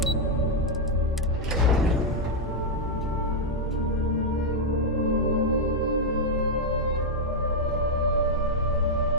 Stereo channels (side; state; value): both; normal; correlation -0.02